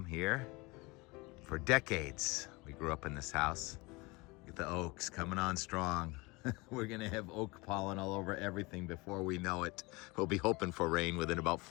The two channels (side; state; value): right; quieter; 24.8 dB